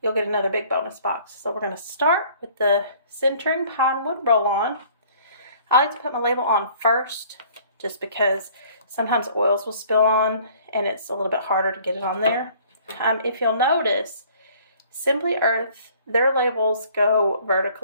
You'll get another big bonus box. So we're going to start with the centering pine wood roll-on. I like to put my label on first just because sometimes oils will spill on and it's a little bit harder to get it on there. If you'll notice, Simply Earth, their labels go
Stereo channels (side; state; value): both; inverted; correlation -0.55